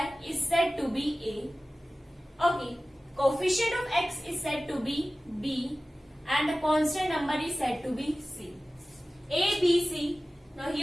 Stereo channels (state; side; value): normal; both; correlation 0.96